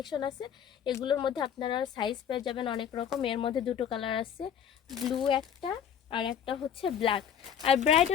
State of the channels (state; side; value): quieter; right; 8.6 dB